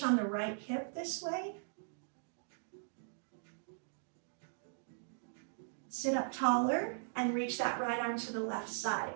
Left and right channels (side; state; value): left; silent; digital silence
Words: on the right hip this way. Sit up taller and reach that right arm to the left side.